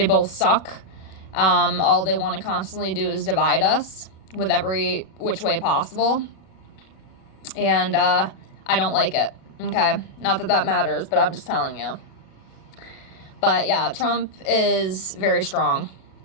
both suck. All they want to constantly do is divide us with every which way possible. And I don't like it. Okay? Not that that matters, but I'm just telling you. But yeah, Trump is very strong.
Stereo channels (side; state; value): right; late; 37 ms